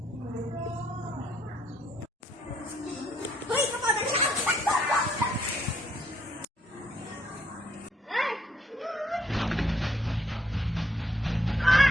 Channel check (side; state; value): both; normal; correlation 0.70